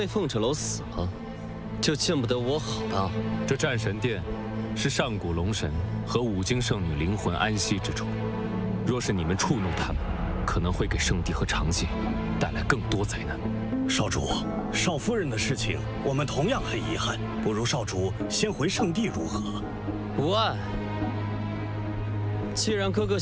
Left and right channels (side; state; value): both; identical; correlation 1.00